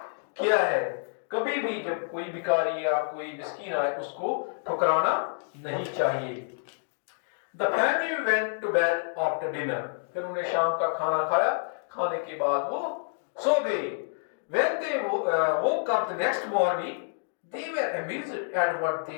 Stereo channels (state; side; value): silent; right; digital silence